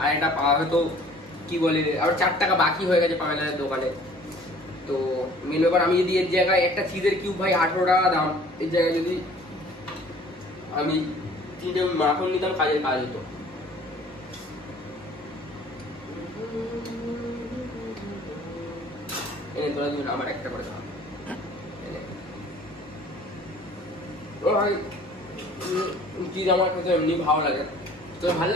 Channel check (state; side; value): normal; both; correlation 0.52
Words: আর একটা পাওয়া হয়তো কি বলে আর 4 টাকা বাকি হয়ে গেছে পামেলার দোকানে। তো মেন ব্যাপার আমি যদি এর জায়গায় একটা চিজের কিউব ভাই 18 টাকা দাম, এর জায়গায় যদি আমি 3টে মাখন নিতাম কাজের কাজ হতো। এনে তোরা দুজন আমার একটা করে দাও। ভাই চিজ আমার খেতে এমনি ভালো লাগে, তোর ভালো